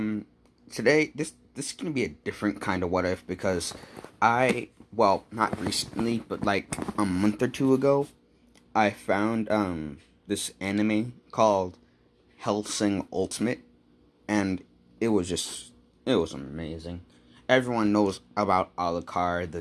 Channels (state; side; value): identical; both; correlation 1.00